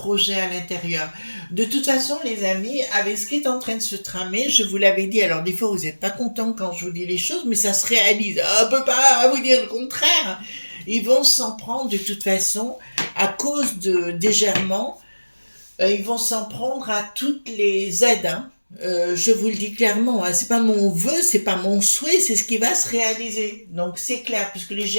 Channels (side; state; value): both; inverted; correlation -1.00